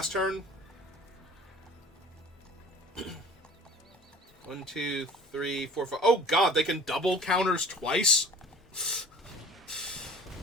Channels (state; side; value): normal; both; correlation 0.45